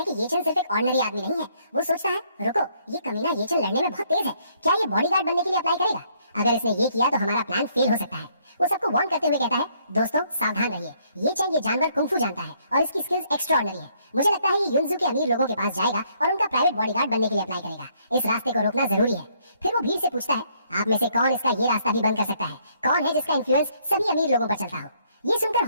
कि ये चैन सिर्फ एक ऑर्डिनरी आदमी नहीं है। वो सोचता है, रुको, ये कमीना ये चैन लड़ने में बहुत तेज है। क्या ये बॉडीगार्ड बनने के लिए अप्लाई करेगा? अगर इसने ये किया तो हमारा प्लान फेल हो सकता है। वो सबको वार्न करते हुए कहता है, दोस्तों सावधान रहिए। ये चैन ये जानवर कुंफू जानता है और इसकी स्किल्स एक्स्ट्राऑर्डिनरी है। मुझे लगता है ये युनजू के अमीर लोगों के पास जाएगा और उनका प्राइवेट बॉडीगार्ड बनने के लिए अप्लाई करेगा। इस रास्ते को रोकना जरूरी है। फिर वो भीड़ से पूछता है, आप में से कौन इसका ये रास्ता भी बंद कर सकता है? कौन है जिसका इन्फ्लुएंस सभी अमीर लोगों पर चलता हो? ये सुनकर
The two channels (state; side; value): inverted; both; correlation -0.68